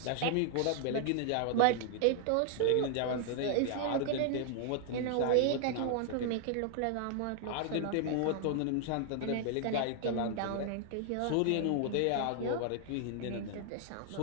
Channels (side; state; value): both; different; correlation 0.00